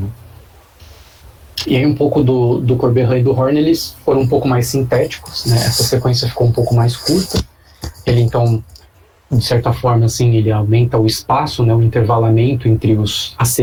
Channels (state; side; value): identical; both; correlation 1.00